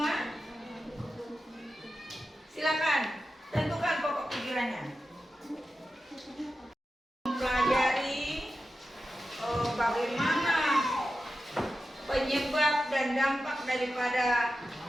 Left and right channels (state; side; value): normal; both; correlation 0.92